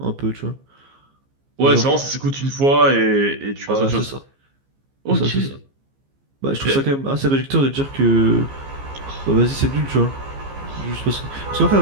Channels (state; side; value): late; left; 15 ms